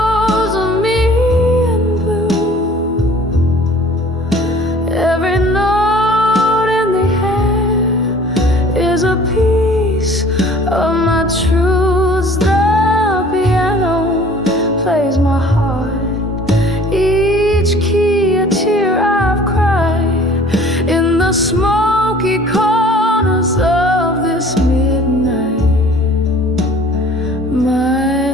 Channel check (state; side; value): normal; both; correlation 0.50